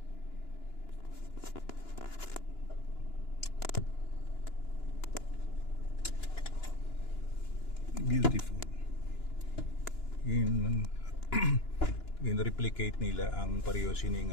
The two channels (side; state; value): right; late; 2.9 ms